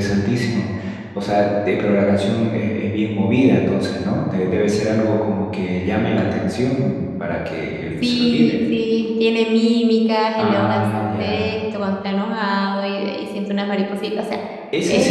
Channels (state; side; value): identical; both; correlation 1.00